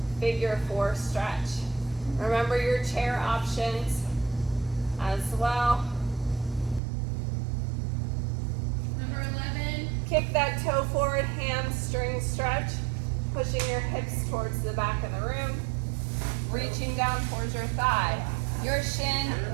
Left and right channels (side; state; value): left; drops out; at 6.8 s